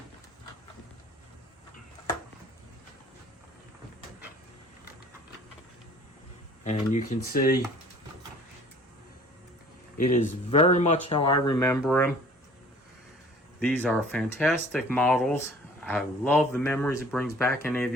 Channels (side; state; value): both; normal; correlation 0.51